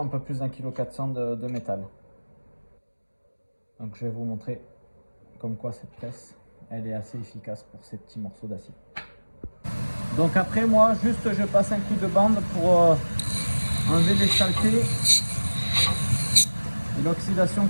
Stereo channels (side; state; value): both; inverted; correlation -1.00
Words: peu plus d'1,4 kg de métal. Donc je vais vous montrer comme quoi cette presse, elle est assez efficace pour ces petits morceaux d'acier. Donc après moi, juste je passe un coup de bande pour enlever les saletés et l'oxydation